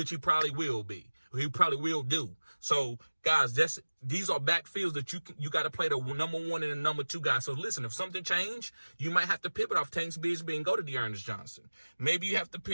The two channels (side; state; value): both; inverted; correlation -1.00